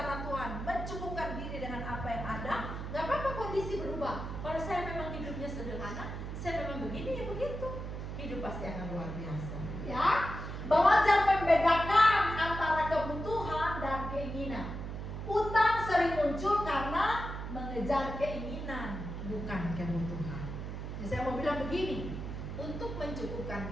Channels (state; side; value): noise; right; hum, 6 dB below the sound